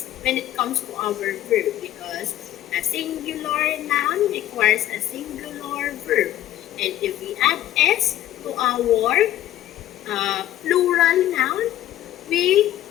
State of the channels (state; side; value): quieter; right; 13.3 dB